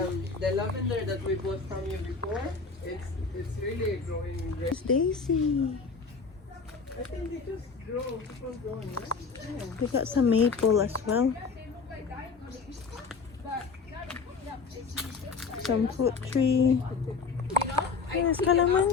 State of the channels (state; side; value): quieter; right; 4.9 dB